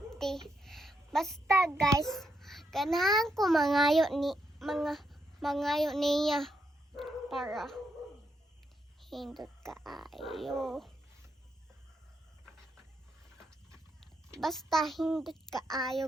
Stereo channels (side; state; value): both; normal; correlation 0.80